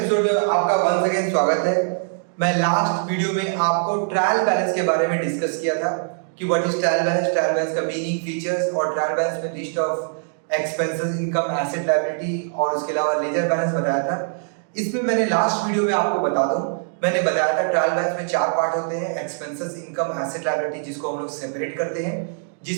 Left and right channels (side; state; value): left; silent; digital silence